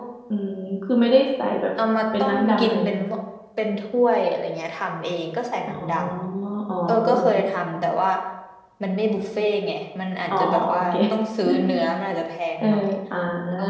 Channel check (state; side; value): identical; both; correlation 1.00